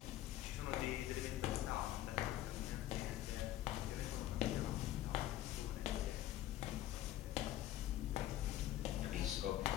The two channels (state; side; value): quieter; right; 13.6 dB